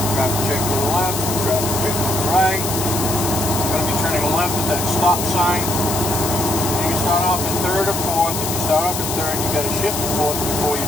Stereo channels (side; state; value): left; noise; hiss, 4 dB below the sound